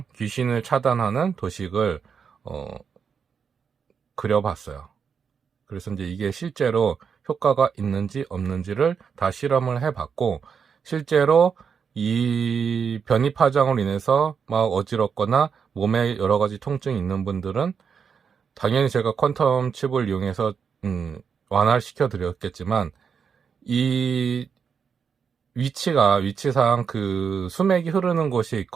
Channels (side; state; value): left; quieter; 6.5 dB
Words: 귀신을 차단하는 도식을 그려봤어요. 그래서 이제 이게 실제로 효과가 있는지 없는지를 다 실험을 해봤고, 실제로 이 변이 파장으로 인해서 막 어지럽거나 몸에 여러 가지 통증이 있는 분들은 당연히 제가 퀀텀 칩을 이용해서 완화시켜 드렸겠지만, 이 위치상 그 수맥이 흐르는 곳에